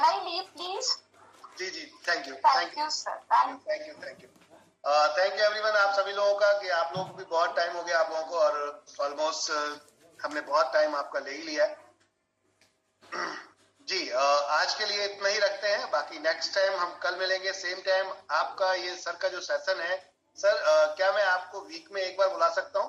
I leave please? जी जी, thank you thank you sir, thank you everyone. आप सभी लोगों का, कि आप लोगों को भी बहुत टाइम हो गया आप लोगों को, और ऑलमोस्ट हमने बहुत टाइम आपका ले ही लिया है जी। आज के लिए इतना ही रखते हैं, बाकी नेक्स्ट टाइम हम कल मिलेंगे सेम टाइम। आपका ये सर का जो सेशन है सर, क्या मैं आपको वीक में एक बार बुला सकता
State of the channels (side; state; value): both; identical; correlation 1.00